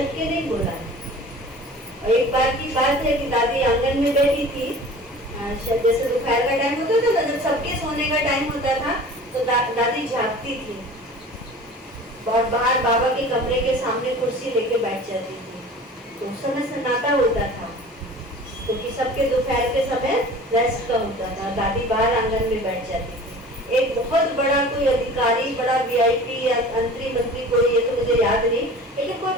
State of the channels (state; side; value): normal; both; correlation 0.41